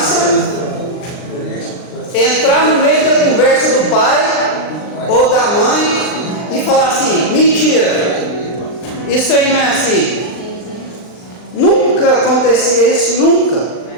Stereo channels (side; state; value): right; late; 39 ms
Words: entrar no meio da conversa do pai ou da mãe e falar assim: mentira, isso aí não é assim. Nunca acontecia isso, nunca.